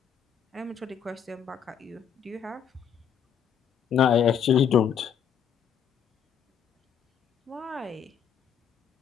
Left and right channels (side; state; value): right; quieter; 8.2 dB